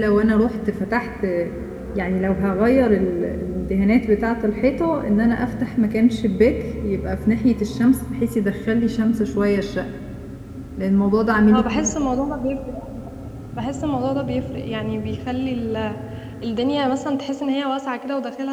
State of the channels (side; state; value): both; identical; correlation 1.00